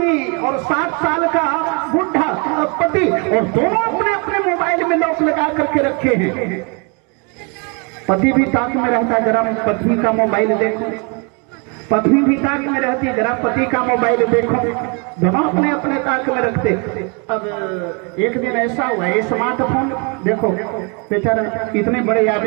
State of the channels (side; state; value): left; quieter; 33.4 dB